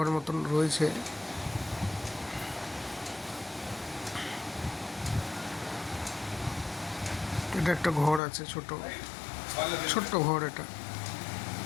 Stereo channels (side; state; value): right; drops out; at 8.2 s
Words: মতন রয়েছে। এটা একটা ঘর আছে, ছোট্ট ঘর। এটা